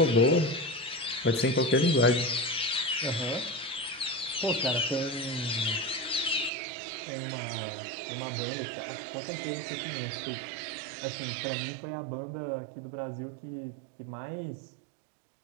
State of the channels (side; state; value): left; drops out; at 6.5 s